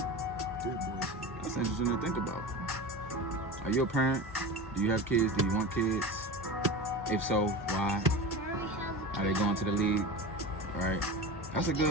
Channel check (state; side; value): normal; both; correlation 0.29